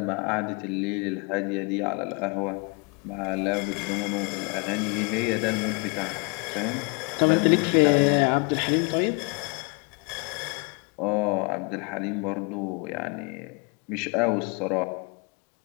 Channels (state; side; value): quieter; right; 32.3 dB